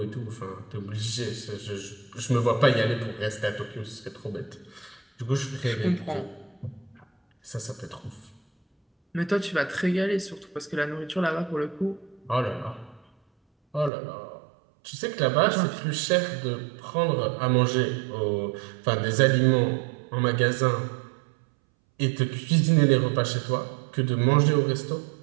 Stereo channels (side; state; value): left; drops out; at 13.9 s